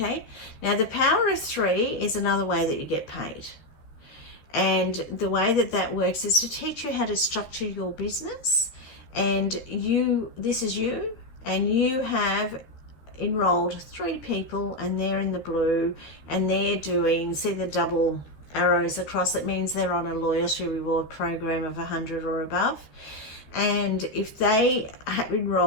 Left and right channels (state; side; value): late; right; 13 ms